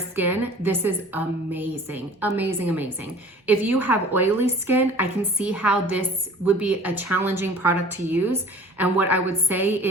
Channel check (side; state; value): both; normal; correlation 0.47